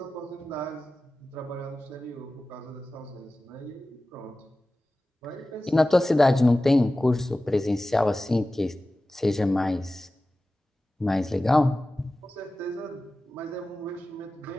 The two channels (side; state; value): both; normal; correlation 0.96